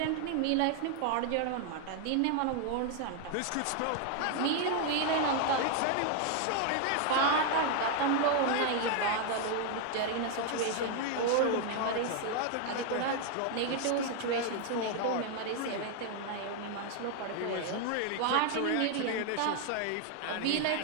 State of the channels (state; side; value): different; both; correlation 0.00